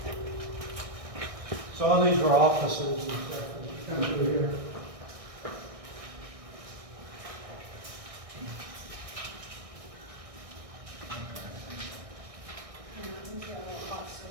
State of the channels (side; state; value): left; late; 1.6 ms